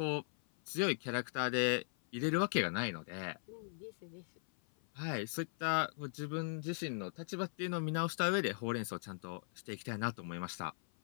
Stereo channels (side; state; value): right; silent; 52 dB below the other